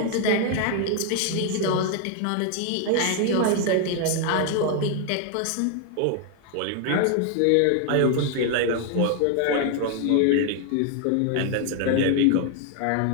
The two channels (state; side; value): different; both; correlation 0.00